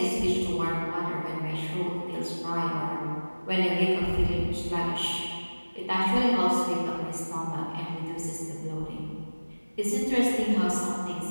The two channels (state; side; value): inverted; both; correlation -1.00